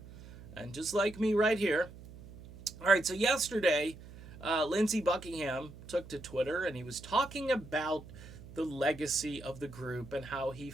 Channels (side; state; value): right; noise; hum, 17 dB below the sound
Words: and just like me right here. All right, so yesterday, Lindsey Buckingham took to Twitter and he was talking about the legacy of the group and how he